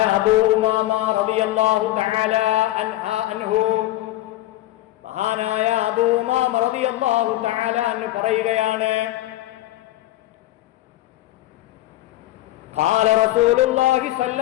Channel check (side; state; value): right; quieter; 15.7 dB